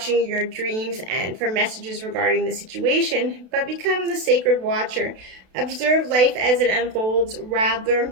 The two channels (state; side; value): late; left; 32 ms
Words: your dreams and for messages regarding the situation, but become the sacred watcher. Observe life as it unfolds rather